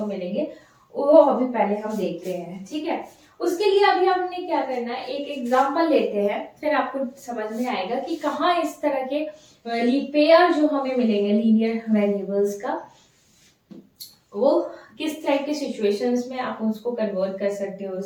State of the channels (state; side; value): identical; both; correlation 1.00